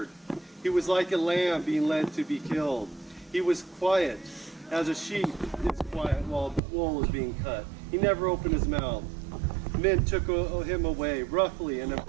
He was like a lamb being led to be killed. He was quiet as a sheep is quiet while wool is being cut. He never opened his mouth. Men took him away roughly and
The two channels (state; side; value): drops out; left; at 6.6 s